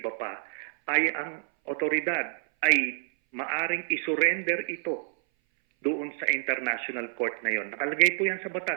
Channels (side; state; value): left; silent; 58 dB below the other